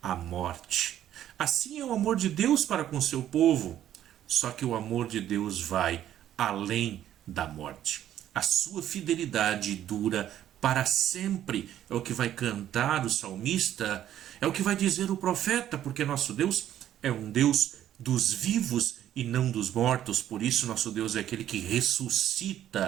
a morte. Assim é o amor de Deus para com seu povo. Só que o amor de Deus vai além da morte. A sua fidelidade dura para sempre. É o que vai cantar o salmista, é o que vai dizer o profeta, porque nosso Deus é um Deus dos vivos e não dos mortos. Por isso nosso Deus é aquele que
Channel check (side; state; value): left; quieter; 11.5 dB